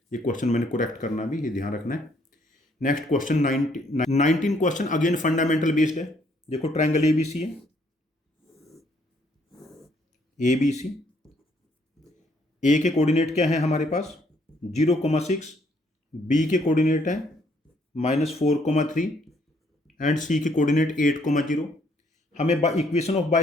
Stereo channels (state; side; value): normal; both; correlation 0.67